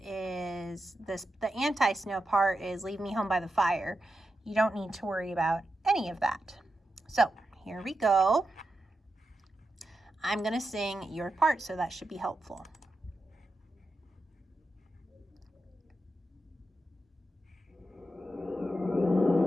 is the anti-snow part is leave me home by the fire. You don't need to worry about any of that. So here we go. I'm going to sing your part, so that should be helpful.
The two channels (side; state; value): both; normal; correlation 0.88